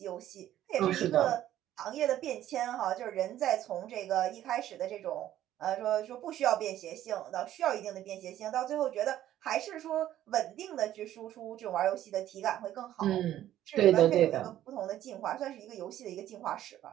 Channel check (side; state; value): left; quieter; 12.5 dB